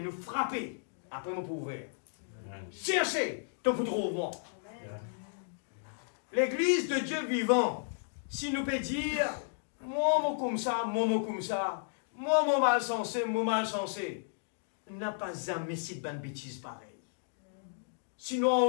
frapper après mon pouvoir. Cherchez, ton pour trouver. L'église de Dieu vivant, si nous peut dire, moi comme ça, moi mal sensé, n'a pas jamais cette bonne bêtise pareille. Si nous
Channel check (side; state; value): right; silent; digital silence